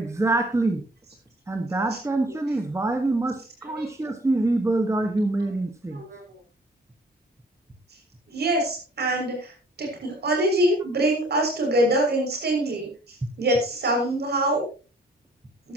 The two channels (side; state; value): both; normal; correlation 0.55